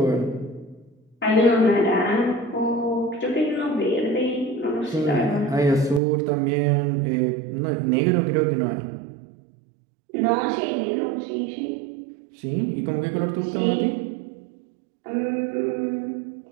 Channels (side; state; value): left; drops out; at 6.0 s